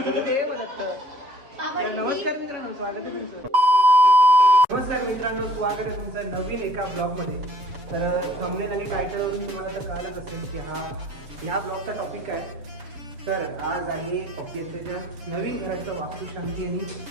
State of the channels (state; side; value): late; left; 7.1 ms